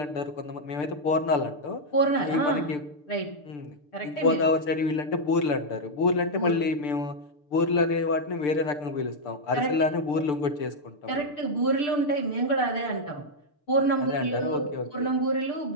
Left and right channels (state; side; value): late; right; 6.8 ms